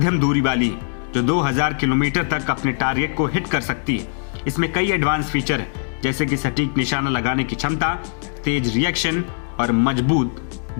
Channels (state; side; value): silent; right; digital silence